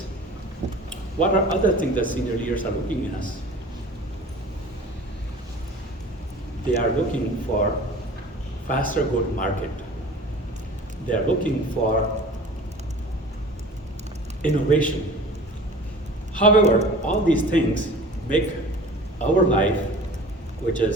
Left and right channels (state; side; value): normal; both; correlation 0.42